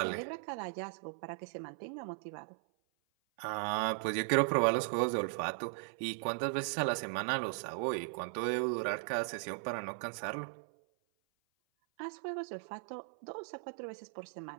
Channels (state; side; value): silent; left; 53 dB below the other